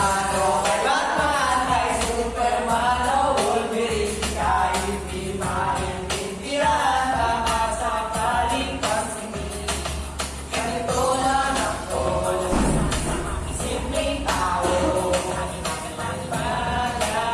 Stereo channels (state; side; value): identical; both; correlation 1.00